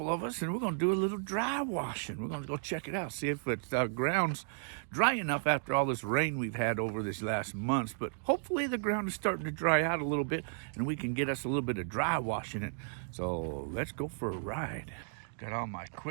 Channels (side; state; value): left; silent; digital silence